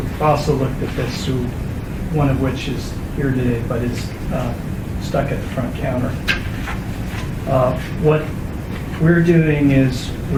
also looked at this, one of which is here today, but is stuck at the front counter. What we're doing is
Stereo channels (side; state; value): both; identical; correlation 1.00